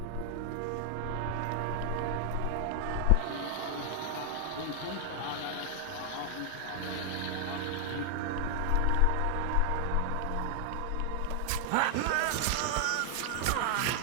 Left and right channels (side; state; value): both; different; correlation 0.00